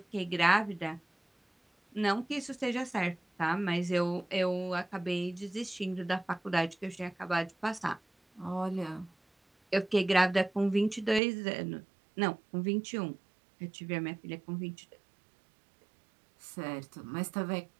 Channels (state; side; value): drops out; left; at 11.2 s